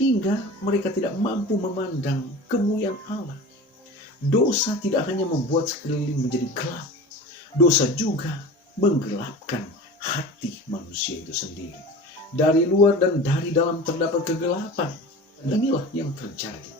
mereka tidak mampu memandang kemuliaan Allah. Dosa tidak hanya membuat sekeliling menjadi gelap, dosa juga menggelapkan hati manusia itu sendiri. Dari luar dan dari dalam terdapat kegelapan. Inilah yang terjadi.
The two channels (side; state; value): both; normal; correlation 0.35